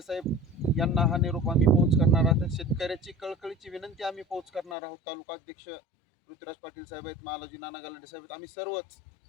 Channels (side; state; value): right; drops out; at 4.8 s